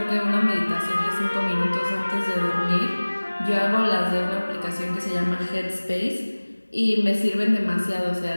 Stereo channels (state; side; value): inverted; both; correlation -1.00